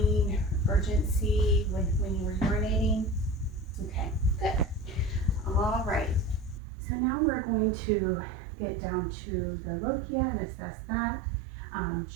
urgency when you were urinating? Okay, good. All right. So now we're going to get down to the lochia and assess that.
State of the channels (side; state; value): left; drops out; at 6.6 s